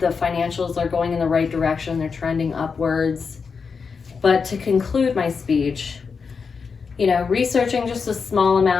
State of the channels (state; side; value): quieter; right; 5.4 dB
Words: financials are going in the right direction, they're trending upwards. But to conclude my speech, researching just a small